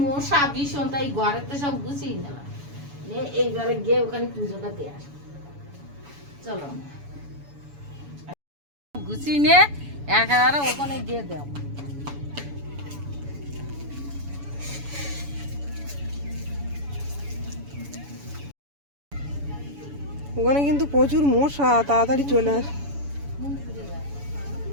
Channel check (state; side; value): late; left; 7.0 ms